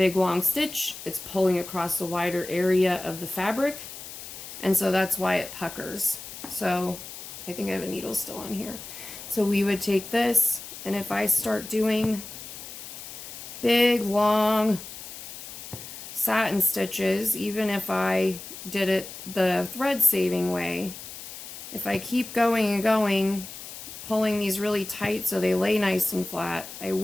long stitch, it's pulling across a wider area of the fabric, and so that's why it puckers. So I think I have a needle still on here. So we would take this, and if I start doing big, long satin stitches, even if I did it the thread saving way, if I keep going and going, pulling these really tight so they lay nice and flat, I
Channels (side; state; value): left; noise; hiss, 12 dB below the sound